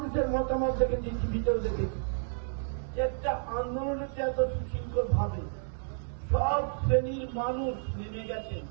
মতামত দেখেছি, ভিতরে দেখেছি, একটা আন্দোলনের এত সুশৃঙ্খল ভাবে সব শ্রেণীর মানুষ নেমে গেছেন।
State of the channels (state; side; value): silent; left; 57 dB below the other